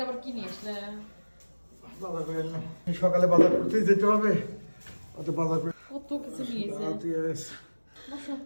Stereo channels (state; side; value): inverted; both; correlation -1.00